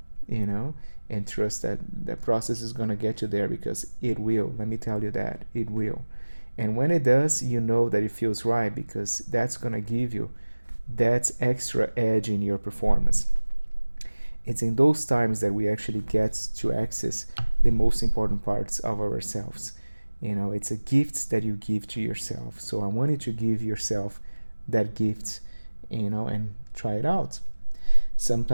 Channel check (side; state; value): both; inverted; correlation -1.00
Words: you know, and trust that the process is going to get you there, because it will. Let me tell you that it will. And when it does, you know that it feels right, because that's going to give you that extra edge in your performance. It's in those times that we actually get to access the most important parts of ourselves. You know, it's a gift that you give to yourself. So I want you to give yourself that gift, you know, and try it out.